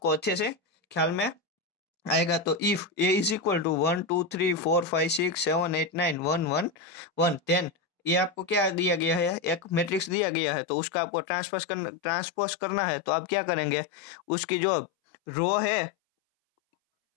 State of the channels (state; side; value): drops out; right; at 10.2 s